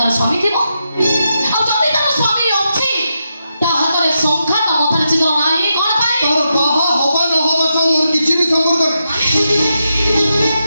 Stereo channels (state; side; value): inverted; both; correlation -0.86